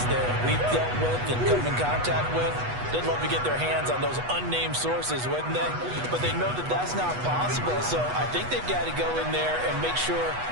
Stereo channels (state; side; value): late; left; 8.2 ms